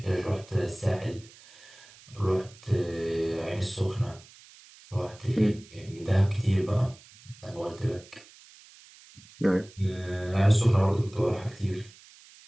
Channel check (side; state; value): right; noise; hiss, 23 dB below the sound